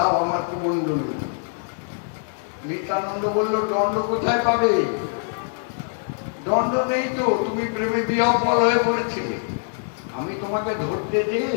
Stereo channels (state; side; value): silent; right; digital silence